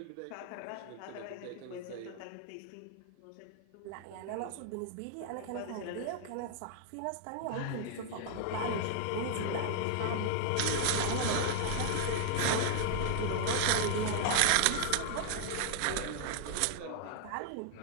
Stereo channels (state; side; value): different; both; correlation 0.00